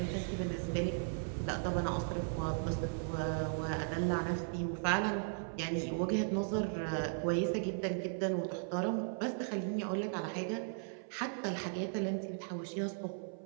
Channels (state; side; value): silent; left; 53 dB below the other